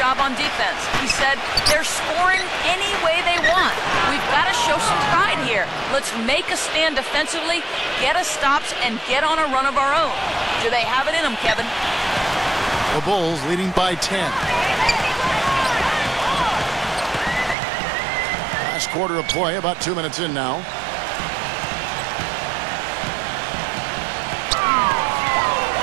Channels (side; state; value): left; drops out; at 17.6 s